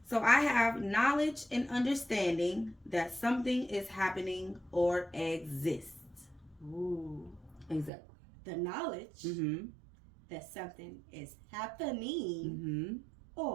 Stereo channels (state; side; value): drops out; left; at 7.9 s